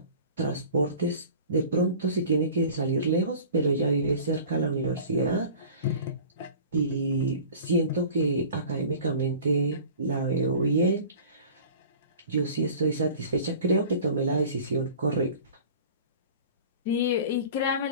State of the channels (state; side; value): inverted; both; correlation -0.43